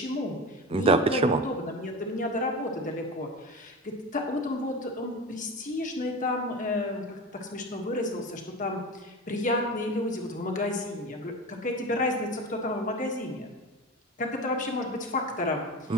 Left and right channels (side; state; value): both; normal; correlation 0.28